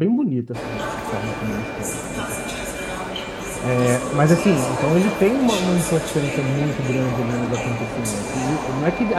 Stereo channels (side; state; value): both; identical; correlation 1.00